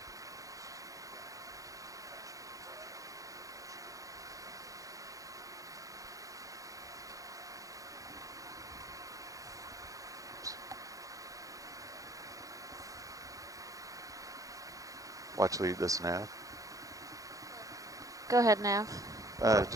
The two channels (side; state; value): left; late; 0.17 ms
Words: Watch lead this nav. Go ahead, Nav.